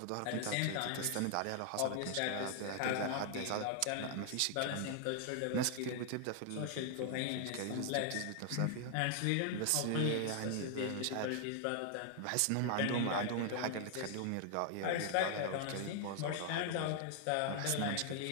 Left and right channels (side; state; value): both; different; correlation 0.00